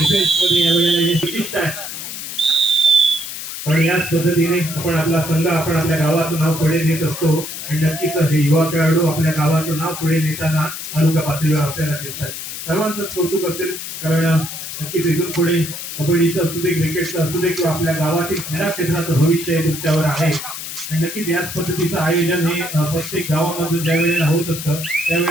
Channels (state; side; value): noise; left; hiss, 8 dB below the sound